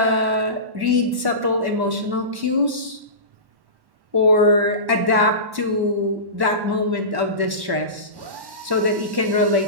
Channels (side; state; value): left; late; 1.1 ms